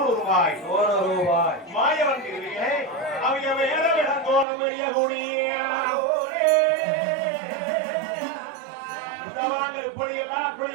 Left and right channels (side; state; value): left; drops out; at 4.5 s